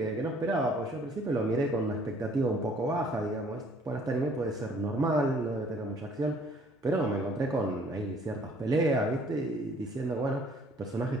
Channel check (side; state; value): both; normal; correlation 0.58